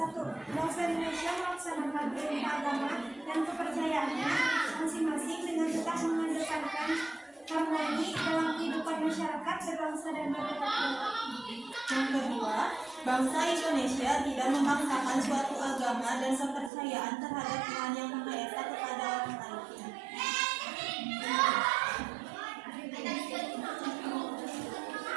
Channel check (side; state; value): left; drops out; at 16.7 s